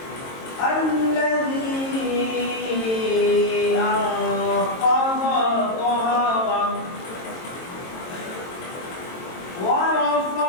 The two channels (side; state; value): right; late; 22 ms